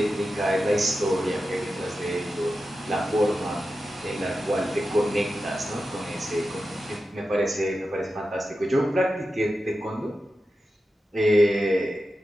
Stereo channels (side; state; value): both; normal; correlation 0.91